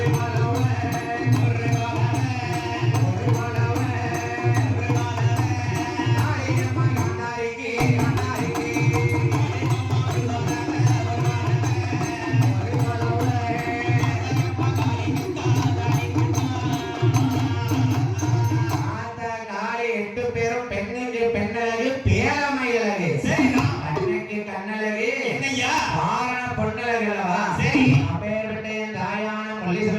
எட்டு பேரும் பெண்ணுக்கு பெண்ணழகு பேரமையழகு. சரிதான். கண்ணுக்கு கண்ணழகு என்னய்யா? ஆரண பொண்ணழகு அல்லவா? சரி. அப்பேற்பட்ட என் தாயான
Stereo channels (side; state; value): both; identical; correlation 1.00